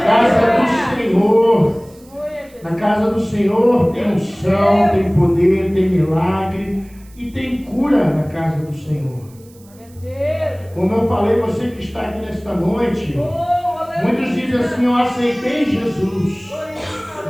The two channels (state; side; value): noise; right; hiss, 28 dB below the sound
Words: casa do Senhor. Na casa do Senhor tem unção, tem poder, tem milagre e tem cura na casa do Senhor. Como eu falei, você que está aqui nesta noite, muitos dizem assim: eu aceitei Jesus.